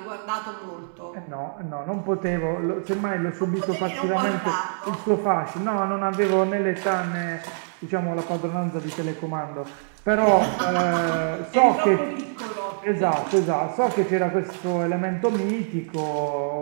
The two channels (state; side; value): silent; left; digital silence